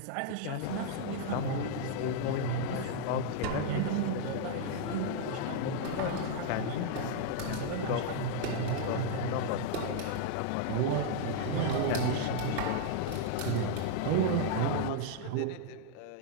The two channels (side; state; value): both; different; correlation -0.01